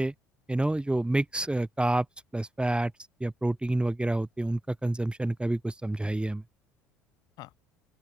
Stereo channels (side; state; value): both; normal; correlation 0.97